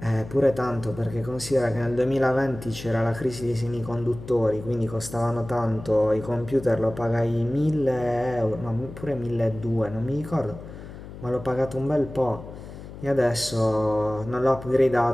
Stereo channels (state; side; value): noise; left; hum, 13 dB below the sound